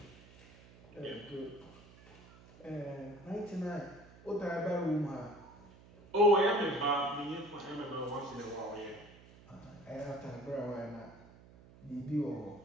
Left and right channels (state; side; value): noise; right; hum, 22 dB below the sound